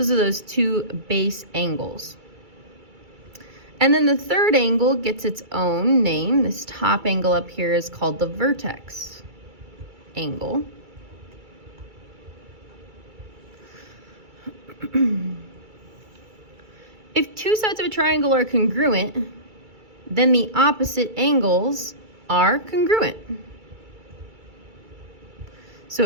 are those two base angles. And then the third angle gets its own name. This top angle up here is called the vertex angle. If two sides of a triangle are congruent, then the opposite angles are congruent. So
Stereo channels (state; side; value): late; left; 2.3 ms